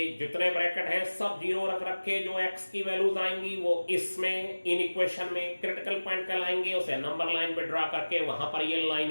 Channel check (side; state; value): both; inverted; correlation -1.00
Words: जितने ब्रैकेट हैं सब 0 रख रखे, जो x की वैल्यूज आएंगी वो इसमें इन इक्वेशन में क्रिटिकल पॉइंट कहलाएंगे। उसे नंबर लाइन पे ड्रा करके वहां पर ये